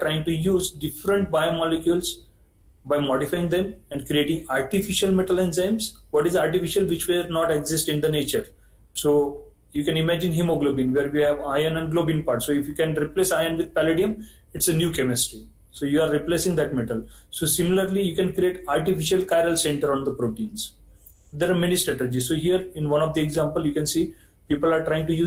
to use different biomolecules by modifying them and creating artificial metal enzymes. What is artificial? Which will not exist in the nature. So you can imagine hemoglobin, where we have iron and globin part. So if you can replace iron with palladium, it's a new chemistry. So you are replacing that metal. So similarly, you can create artificial chiral center on the proteins. There are many strategies. So here in one of the example, you can see people are trying to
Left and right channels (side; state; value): both; identical; correlation 1.00